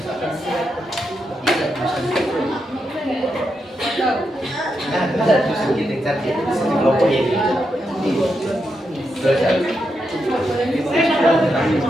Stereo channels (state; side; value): normal; both; correlation 0.84